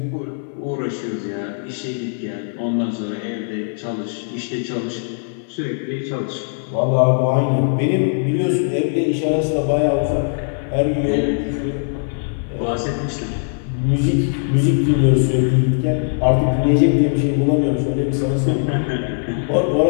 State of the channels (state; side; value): silent; right; 57 dB below the other